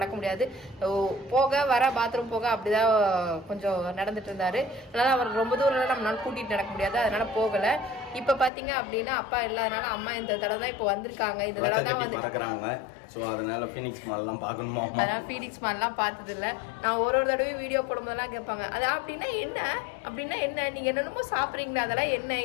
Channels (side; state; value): right; drops out; at 8.5 s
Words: முடியாது, போக வர பாத்ரூம் போக அப்படிதான் கொஞ்சம் நடந்துட்டு இருந்தாரு. அதனால அவர் ரொம்ப தூரம் நம்மளால கூட்டிட்டு நடக்க முடியாது, அதனால போகல. இப்ப பாத்தீங்க அப்படின்னா அப்பா இல்லாதனால அம்மா இந்த தடவை தான் இப்ப வந்திருக்காங்க. இந்த தடவை தான் வந்து அதனால ஃபீனிக்ஸ் மால்லாம் பார்க்கணுமா? அதனால ஃபீனிக்ஸ் மால்லாம் பார்த்தது இல்லை. நான் ஒரு தடவையும் வீடியோ போடும்போதெல்லாம் கேட்பாங்க, அது அப்படின்னா என்ன நீங்க என்னென்னமோ சாப்பிட்றீங்களா, அதெல்லாம் என்ன